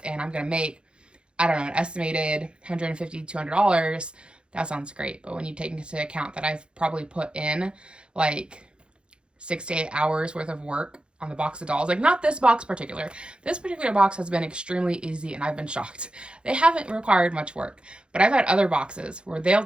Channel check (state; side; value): late; left; 0.055 ms